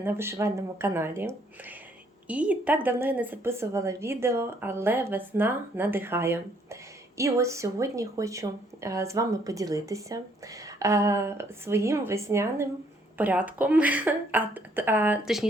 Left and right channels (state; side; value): normal; both; correlation 0.66